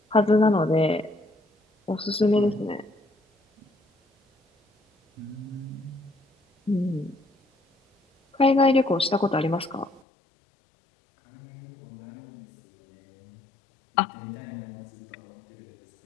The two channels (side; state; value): right; drops out; at 10.0 s